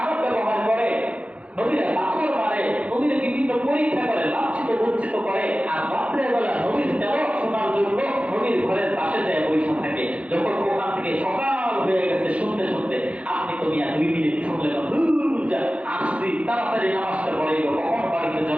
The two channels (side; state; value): left; late; 0.064 ms